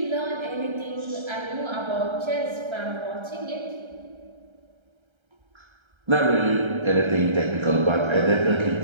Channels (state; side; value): late; left; 1.3 ms